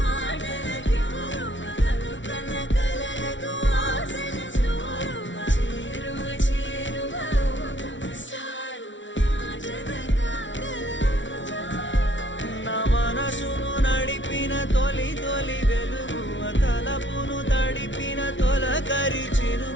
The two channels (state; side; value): late; right; 0.55 ms